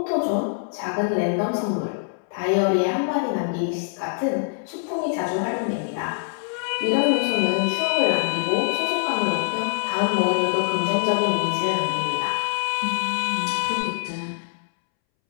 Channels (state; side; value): silent; right; 63 dB below the other